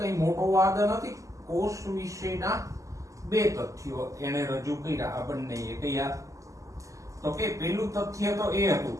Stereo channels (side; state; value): left; late; 0.16 ms